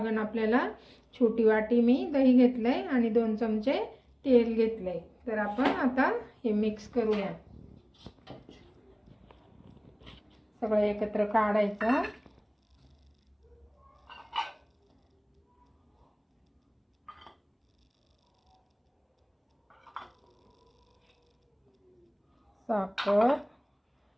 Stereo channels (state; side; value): identical; both; correlation 1.00